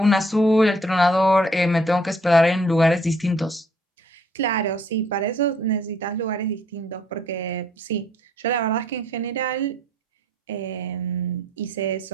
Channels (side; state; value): both; normal; correlation 0.63